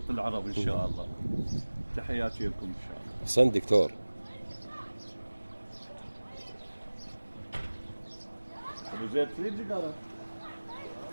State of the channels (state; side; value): inverted; both; correlation -1.00